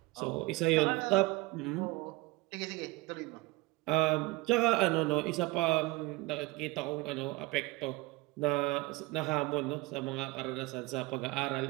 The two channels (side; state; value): left; quieter; 21.8 dB